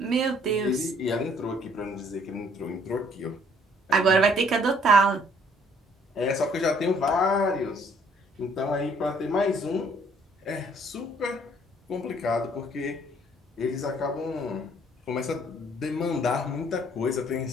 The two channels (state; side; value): normal; both; correlation 0.61